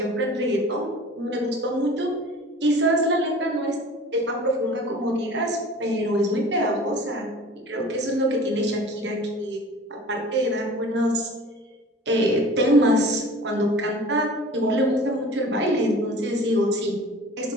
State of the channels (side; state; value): both; normal; correlation 0.43